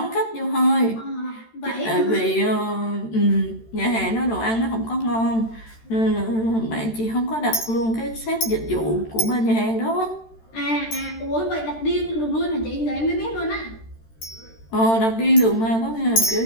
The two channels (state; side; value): late; right; 13 ms